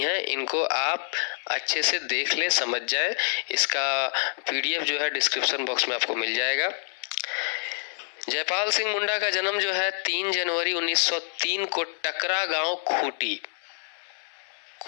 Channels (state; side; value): silent; right; 60 dB below the other